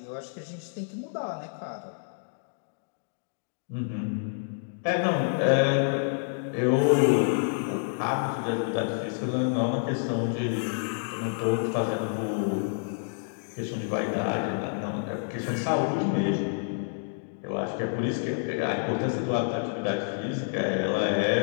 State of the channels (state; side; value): silent; right; digital silence